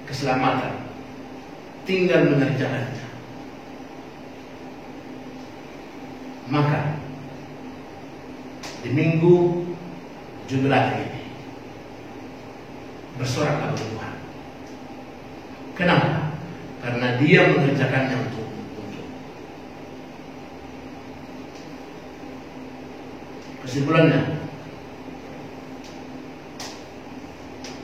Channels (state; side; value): identical; both; correlation 1.00